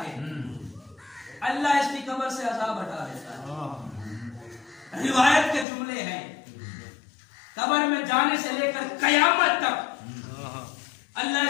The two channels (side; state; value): right; drops out; at 5.7 s